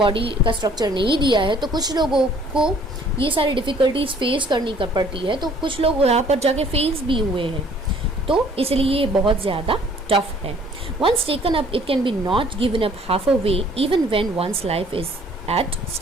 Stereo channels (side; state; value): both; normal; correlation 0.57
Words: का स्ट्रक्चर नहीं दिया है, तो कुछ लोगों को ये सारी डिफ़िकल्टीज फेस करनी पड़ती है। तो कुछ लोग यहाँ पर जाके फेस भी हुए हैं, तो इसलिए ये बहुत ज़्यादा टफ है। Once taken up it can be not given up half a way even when one's life is at